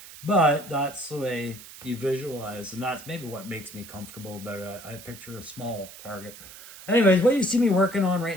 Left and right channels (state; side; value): noise; right; hiss, 16 dB below the sound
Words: that's the way you visualize, and that's maybe what makes me comfortable about it. I picture a small target. Anyways, what you see me working on